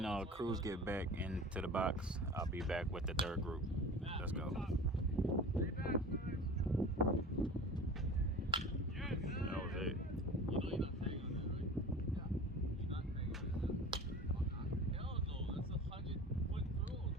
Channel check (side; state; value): both; normal; correlation 0.38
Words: Cruz get back into the box, I'll be back with the third group. Let's go. Three bats, nice. Yes. That was it. You know you're not tagging on that, right? Yeah. You're not tagging on that. Hell no. That's 100-foot throw.